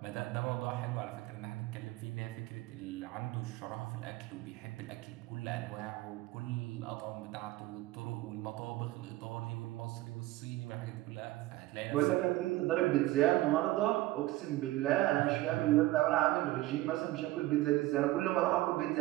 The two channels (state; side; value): quieter; left; 17.5 dB